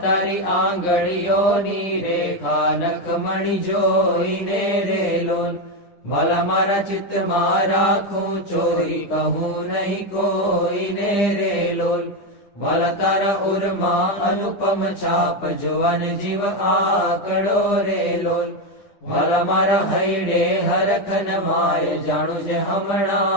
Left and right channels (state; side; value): late; right; 9.9 ms